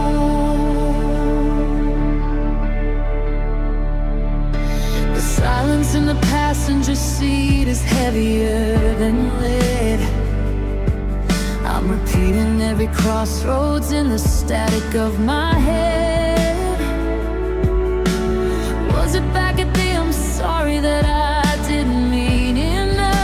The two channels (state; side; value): identical; both; correlation 1.00